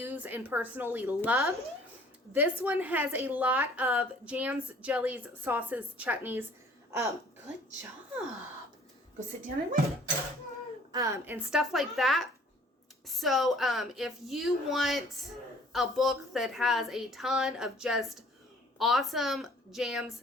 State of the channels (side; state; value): both; normal; correlation 0.55